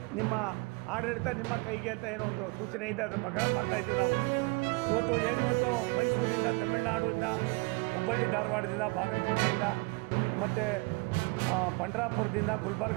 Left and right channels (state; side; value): quieter; left; 27.6 dB